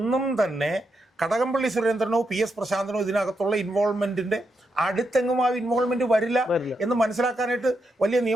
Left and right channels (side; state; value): both; normal; correlation 0.83